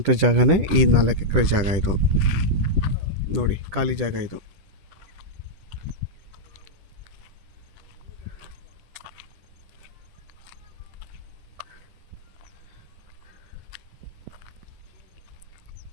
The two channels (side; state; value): left; late; 10 ms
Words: ಜಾಗನೇ ಈ 4 ಎಕರೆ ಜಾಗ. ಇದು ನೋಡಿ, ಖಾಲಿ ಜಾಗ ಇದು.